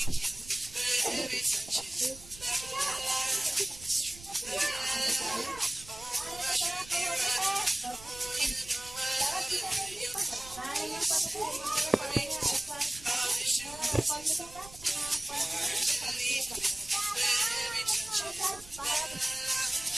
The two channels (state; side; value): noise; right; rumble, 18 dB below the sound